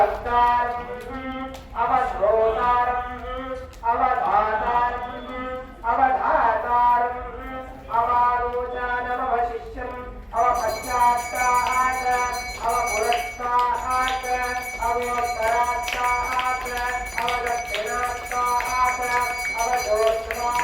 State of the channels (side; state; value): both; identical; correlation 1.00